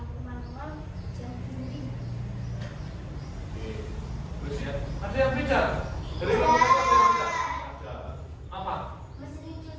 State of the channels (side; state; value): both; identical; correlation 1.00